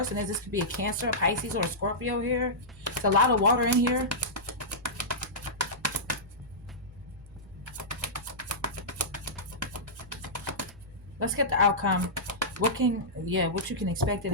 is. This could be a Cancer, a Pisces, or a Scorpio here. It's a lot of water in here. Let's get the outcome. What you can expect in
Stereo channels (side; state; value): right; noise; hum, 23 dB below the sound